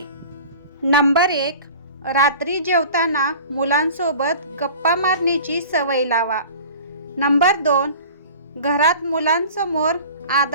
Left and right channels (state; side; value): inverted; both; correlation -0.41